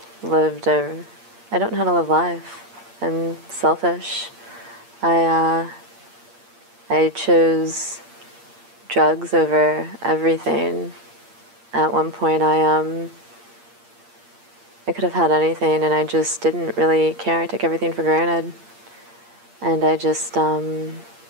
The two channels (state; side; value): late; left; 8.6 ms